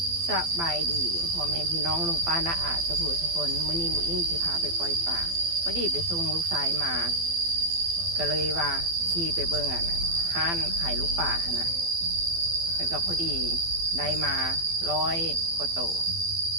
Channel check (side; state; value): left; late; 12 ms